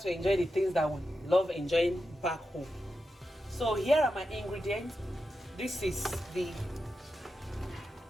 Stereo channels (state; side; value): normal; both; correlation 0.89